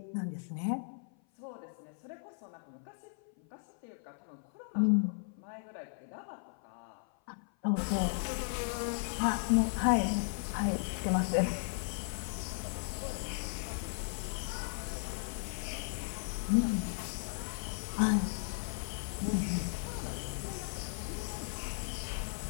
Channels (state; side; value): silent; right; 54 dB below the other